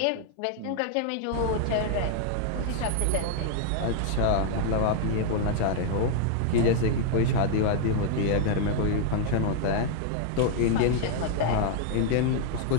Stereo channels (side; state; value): both; different; correlation -0.01